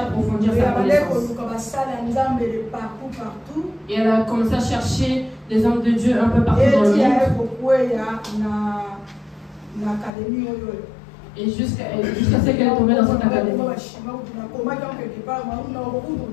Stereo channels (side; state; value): right; drops out; at 10.1 s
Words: approfondir sa connaissance. Et elle a commencé à chercher des hommes de Dieu un peu partout dans le monde. Et jusqu'à ce qu'elle est tombée dans cette académie.